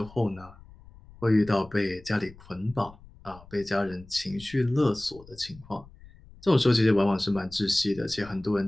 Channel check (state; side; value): noise; left; rumble, 22 dB below the sound